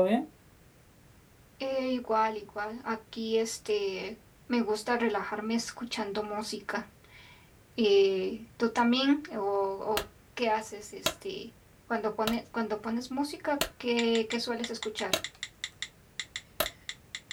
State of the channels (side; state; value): both; identical; correlation 1.00